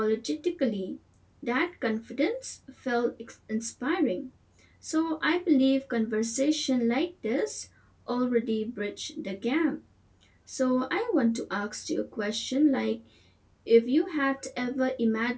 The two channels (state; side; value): identical; both; correlation 1.00